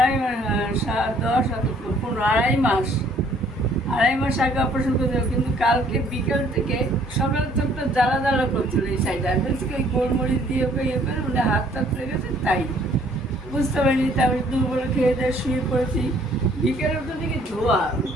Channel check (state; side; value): normal; both; correlation 0.61